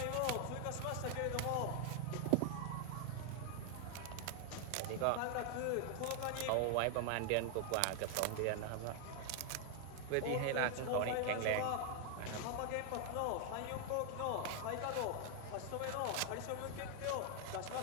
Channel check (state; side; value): different; both; correlation 0.00